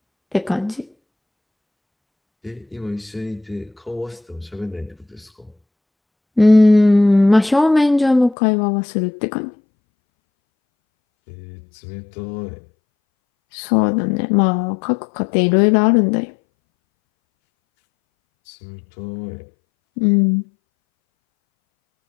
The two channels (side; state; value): right; drops out; at 8.3 s